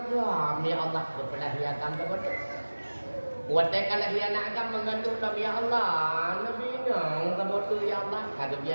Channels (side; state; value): both; inverted; correlation -1.00